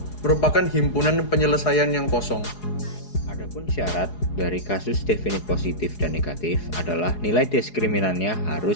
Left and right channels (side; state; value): right; late; 4.8 ms